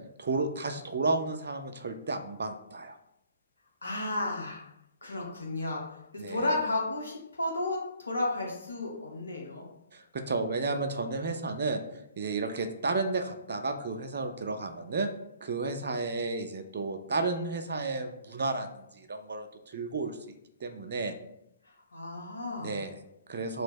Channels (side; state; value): both; inverted; correlation -0.60